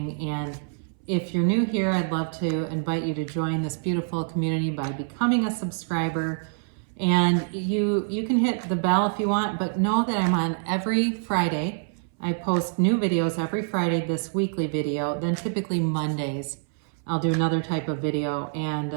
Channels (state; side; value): silent; left; 60 dB below the other